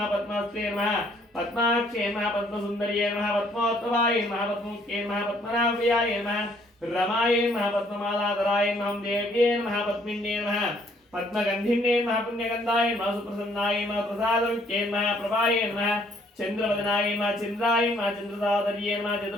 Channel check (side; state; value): both; normal; correlation 0.64